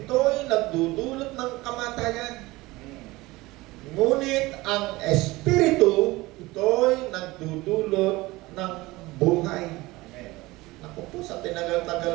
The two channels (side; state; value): left; quieter; 20.5 dB